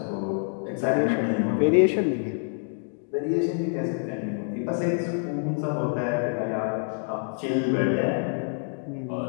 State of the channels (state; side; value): silent; right; 57 dB below the other